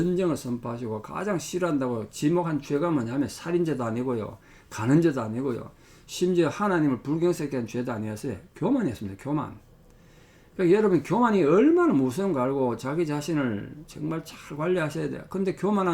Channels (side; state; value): both; identical; correlation 1.00